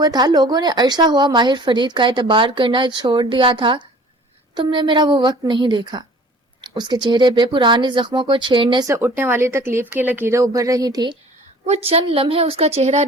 تھا. لوگوں نے عرصہ ہوا ماہر فرید کا اعتبار کرنا چھوڑ دیا تھا. تم نے میرا وہ وقت نہیں دیکھا. اس کے چہرے پہ پرانے زخموں کو چھیڑنے سے اٹھنے والی تکلیف کی لکیریں ابھر رہی تھی. وہ چند لمحے اس کا چہرہ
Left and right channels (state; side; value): normal; both; correlation 0.48